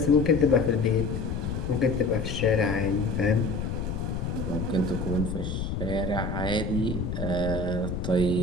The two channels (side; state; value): left; noise; rumble, 3 dB below the sound